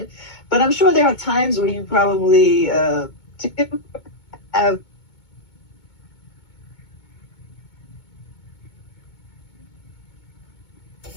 But I'm sure there are times where you probably have.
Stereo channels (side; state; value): right; late; 2.2 ms